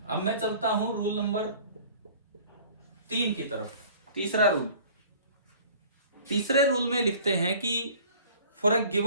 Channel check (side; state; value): both; inverted; correlation -0.49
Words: अब मैं चलता हूं रूल नंबर 3 की तरफ। तीसरा रूल, तीसरे रूल में लिखते हैं कि for a